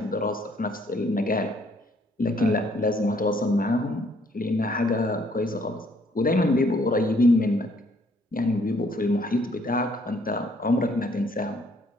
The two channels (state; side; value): normal; both; correlation 0.65